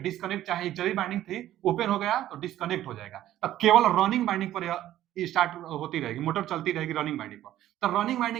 चाहे एक्सिलरी वाइंडिंग थी, ओपन हो गया तो डिस्कनेक्ट हो जाएगा। तब केवल रनिंग वाइंडिंग पर यह स्टार्ट होती रहेगी, मोटर चलती रहेगी रनिंग वाइंडिंग पर। तो रनिंग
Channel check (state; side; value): quieter; left; 13.1 dB